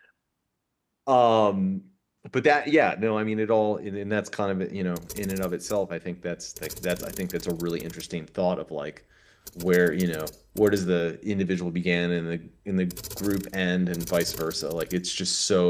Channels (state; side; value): identical; both; correlation 1.00